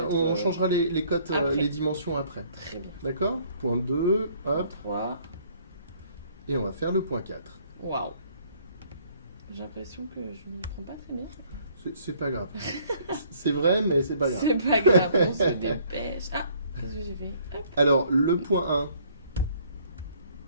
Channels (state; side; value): inverted; both; correlation -0.61